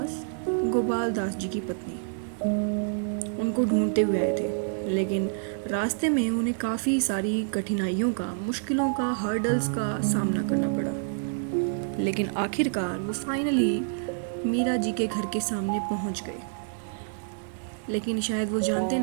गोपाल दास जी की पत्नी, उनको ढूंढते हुए आए थे। लेकिन रास्ते में उन्हें काफ़ी सारी कठिनाइयों का, मुश्किलों का, हर्डल्स का सामना करना पड़ा। लेकिन आखिरकार वो फाइनली मीरा जी के घर के सामने पहुंच गए। लेकिन शायद वो जानते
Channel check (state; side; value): silent; left; 60 dB below the other